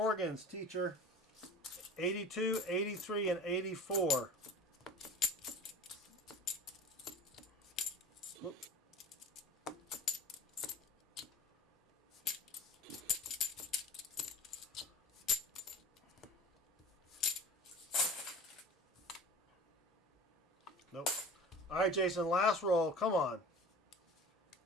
teacher. 82, 83, and 84. Whoop. Nope. All right, Jason, last roll. Come on.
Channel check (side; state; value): both; normal; correlation 0.40